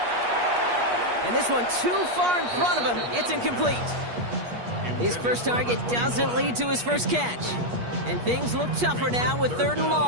And this one too far in front of him. It's incomplete. His first target doesn't lead to his first catch. And things look tougher now with 3rd and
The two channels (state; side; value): late; left; 8.4 ms